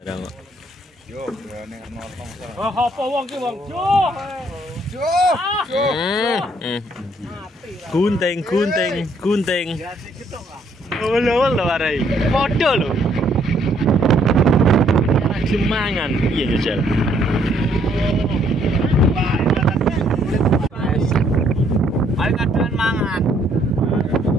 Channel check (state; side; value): normal; both; correlation 0.67